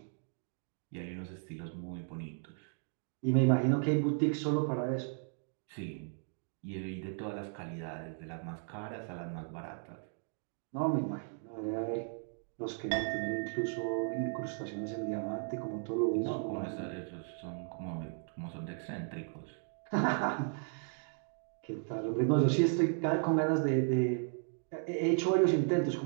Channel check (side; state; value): left; silent; 54 dB below the other